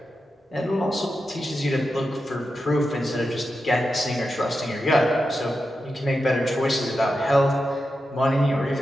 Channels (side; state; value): both; normal; correlation 0.89